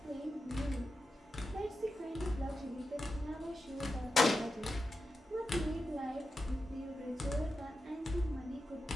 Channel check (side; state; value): both; normal; correlation 0.89